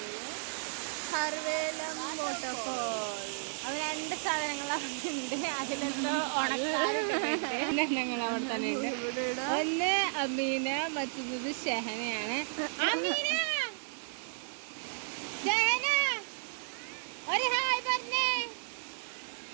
സർവേലം വാട്ടർഫോൾ. അത് 2 സാധനങ്ങൾ അവിടെ ഉണ്ട്. അതിലെന്തോ ഉണക്കാരങ്ങൾ അവിടെ തന്നെ ഉണ്ട്. ഒന്ന് അമീന, മറ്റൊന്നത് ഷെഹനയാണ്. അമീന, ഷെഹന ഒരു ഹായ് പറഞ്ഞേ.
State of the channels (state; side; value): silent; left; digital silence